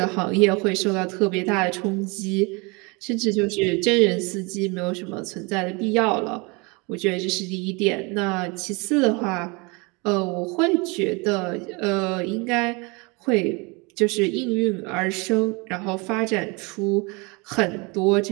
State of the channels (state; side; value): quieter; left; 28.4 dB